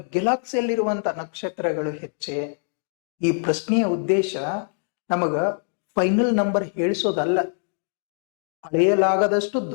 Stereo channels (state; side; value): silent; right; 63 dB below the other